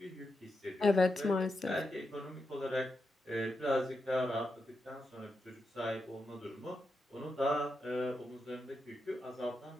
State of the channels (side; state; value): both; normal; correlation 0.86